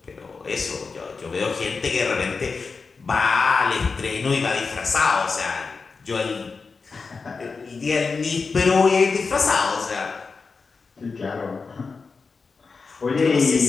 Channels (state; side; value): quieter; right; 4.6 dB